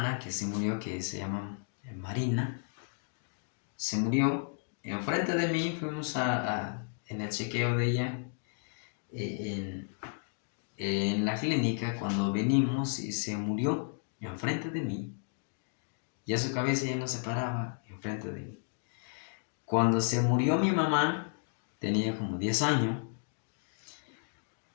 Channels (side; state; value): right; silent; 56 dB below the other